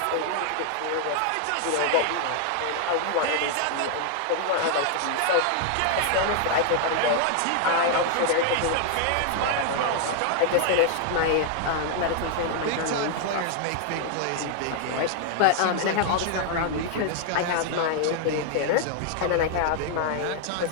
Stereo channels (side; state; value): both; different; correlation 0.00